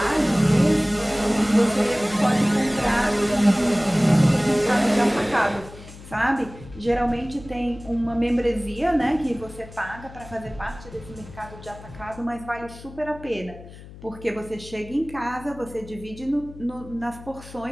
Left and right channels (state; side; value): noise; left; hum, 17 dB below the sound